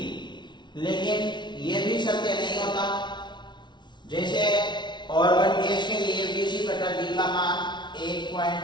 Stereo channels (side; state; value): right; late; 0.22 ms